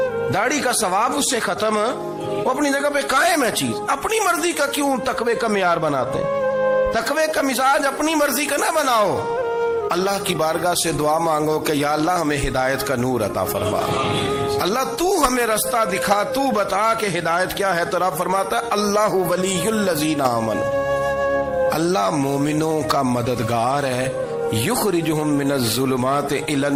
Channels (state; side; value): identical; both; correlation 1.00